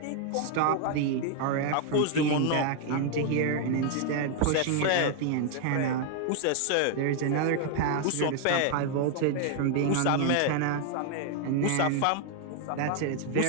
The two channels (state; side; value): different; both; correlation 0.00